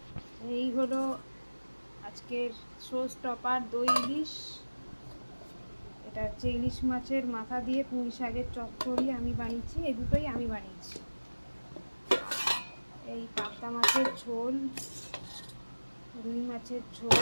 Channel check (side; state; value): both; inverted; correlation -1.00